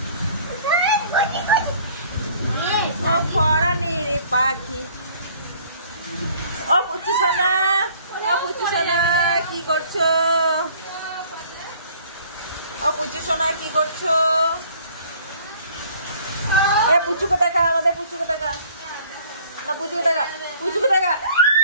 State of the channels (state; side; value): inverted; both; correlation -0.54